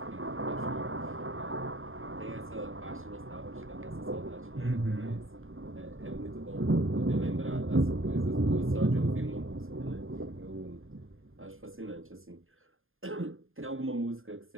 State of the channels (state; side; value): late; left; 0.60 ms